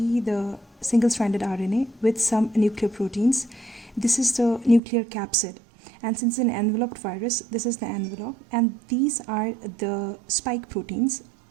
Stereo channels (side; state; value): left; drops out; at 4.8 s